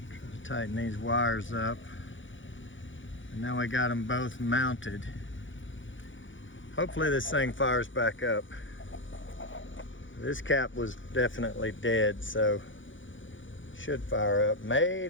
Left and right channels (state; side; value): late; right; 0.56 ms